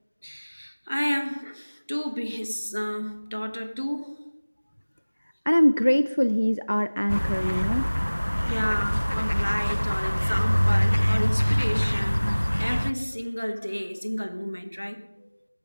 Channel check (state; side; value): inverted; both; correlation -1.00